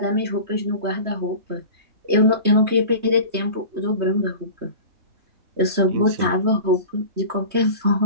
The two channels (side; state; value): left; late; 3.2 ms